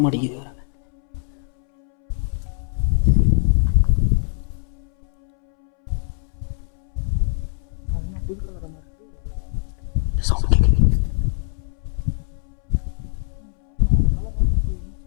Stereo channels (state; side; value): silent; right; 64 dB below the other